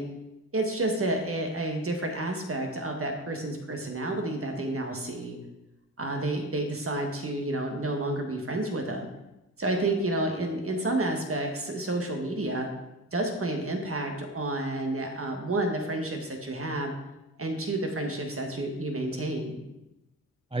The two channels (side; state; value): both; normal; correlation 0.28